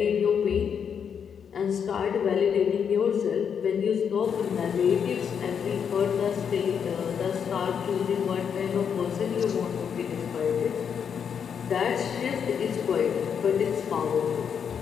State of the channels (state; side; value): quieter; right; 7.4 dB